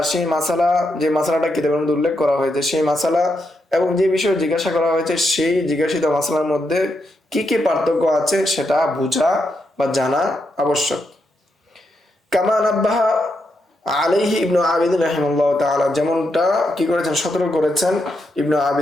সেই মাসালা, যে মাসালাটা কিতাবের মধ্যে উল্লেখ করা হয়েছে সেই মাসালা এবং যে বিষয়ে জিজ্ঞাসা করা হয়েছে সেই জিজ্ঞাসিত মাসালার মধ্যে কি কি পার্থক্য আছে সেটা বোঝা বা জানা আবশ্যক। কামা নাব্বাহা আলাইহি ইবনু আবিদিন রাহিমাহুল্লাহ তাআলা, যেমনটা কি করেছেন, সতর্ক করেছেন ইবনু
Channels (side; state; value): both; normal; correlation 0.82